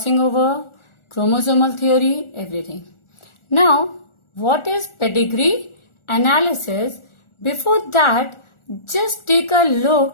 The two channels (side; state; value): right; late; 1.4 ms